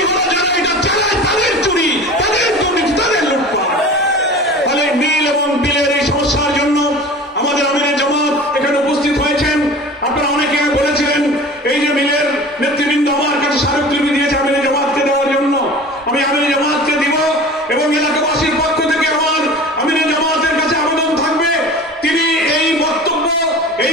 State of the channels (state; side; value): normal; both; correlation 0.38